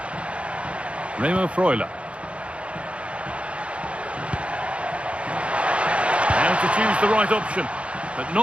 Remo Freuler. Now to choose the right option, but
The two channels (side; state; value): left; late; 0.060 ms